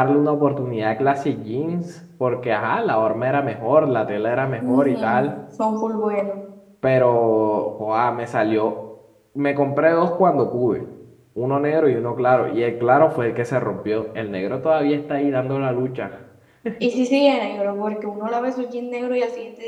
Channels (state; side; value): identical; both; correlation 1.00